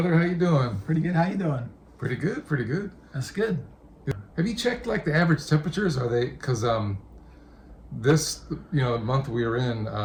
How you doing? Pretty good. How you doing? Pretty good, pretty good. That's good. Have you checked like the average temperatures? Are they, because this month we are in,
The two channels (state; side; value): identical; both; correlation 1.00